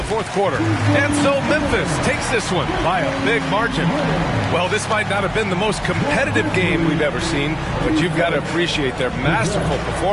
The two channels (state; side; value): identical; both; correlation 1.00